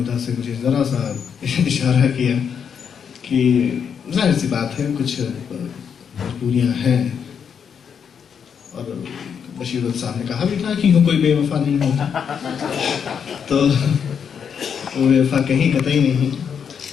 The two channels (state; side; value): quieter; right; 7.2 dB